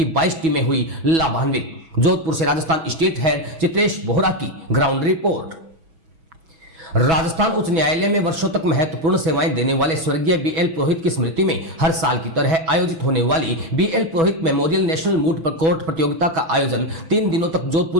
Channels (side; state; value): left; late; 6.1 ms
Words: 22 टीमें हुई लाभान्वित। जोधपुर से राजस्थान स्टेट हेड चित्रेश बोहरा की ग्राउंड रिपोर्ट। राजस्थान उच्च न्यायालय में वर्षों तक महत्वपूर्ण सेवाएं देने वाले स्वर्गीय बीएल पुरोहित की स्मृति में हर साल की तरह आयोजित होने वाली बीएल पुरोहित मेमोरियल नेशनल मूट कोर्ट प्रतियोगिता का आयोजन 3 दिनों तक